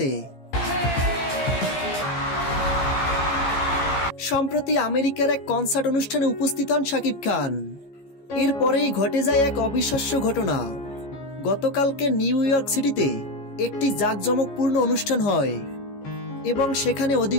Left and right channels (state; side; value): late; right; 15 ms